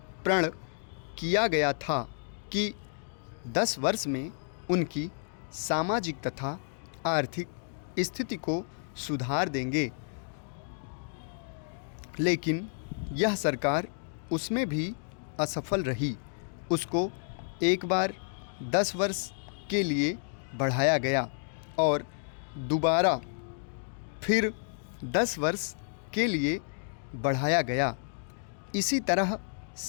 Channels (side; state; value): right; silent; digital silence